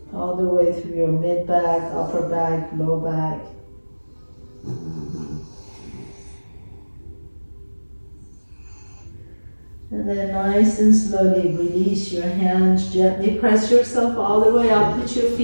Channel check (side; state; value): both; inverted; correlation -1.00